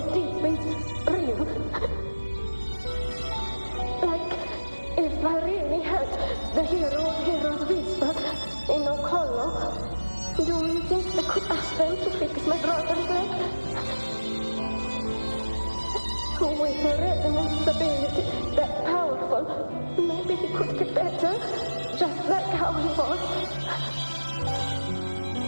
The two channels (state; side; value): inverted; both; correlation -1.00